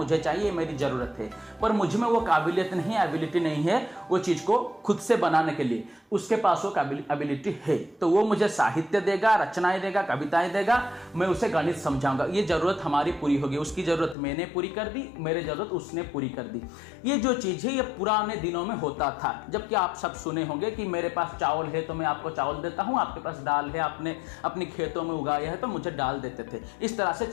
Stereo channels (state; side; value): drops out; right; at 14.2 s